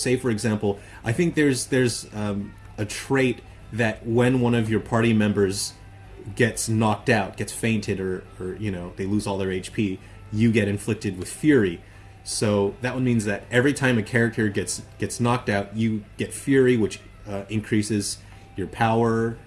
for example, I think there's a trait that when one of your party members gets knocked out, gets fainted, or they lose all their HP, you get inflicted with fury. So that one means that every time a character gets knocked out, you get fury, which increases your power,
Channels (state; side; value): identical; both; correlation 1.00